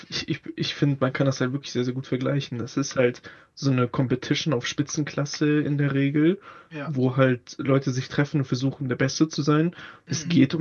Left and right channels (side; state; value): both; identical; correlation 1.00